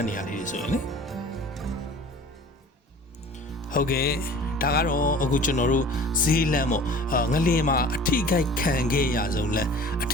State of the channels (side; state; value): both; normal; correlation 0.44